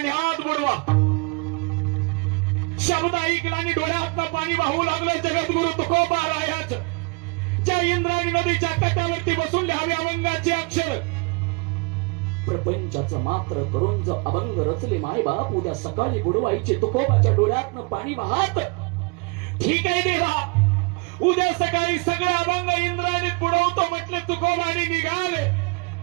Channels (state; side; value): quieter; left; 30.1 dB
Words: बुडवा. शब्द ऐकला आणि डोळ्यातनं पाणी वाहू लागलं जगद्गुरु तुकोबारायाचं. ज्या इंद्रायणी नदीच्या काठावरती बसून लिहावे अभंगाचे अक्षर. प्रपंचाचं मात्र करून जर अभंग रचले मायबाप, उद्या सकाळी बुडवायचे तुकोबाच्या डोळ्यातनं पाणी वाहत. ठीक आहे देवा, उद्या सकाळी सगळे अभंग इंद्रायणीत बुडवतो म्हटले तुकोबाने निघाले.